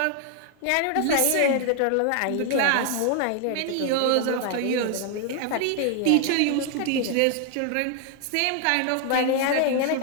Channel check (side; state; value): both; different; correlation 0.00